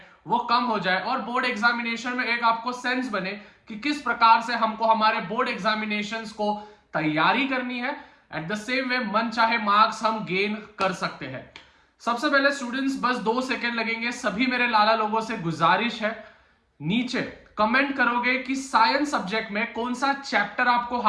वो कम हो जाए और बोर्ड एग्जामिनेशन में एक आपको सेंस बने कि किस प्रकार से हमको हमारे बोर्ड एग्जामिनेशंस को तैयारी करनी है। एट द सेम वे मन चाहे मार्क्स हम गेन कर सकते हैं। सबसे पहले स्टूडेंट्स, बस 2 सेकंड लगेंगे। सभी मेरे लाला लोगों से गुजारिश है, नीचे कमेंट करोगे कि साइंस सब्जेक्ट में कौन सा चैप्टर आपको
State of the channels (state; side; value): identical; both; correlation 1.00